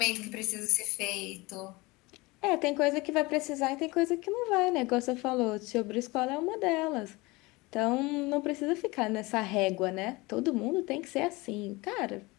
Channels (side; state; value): right; quieter; 23.1 dB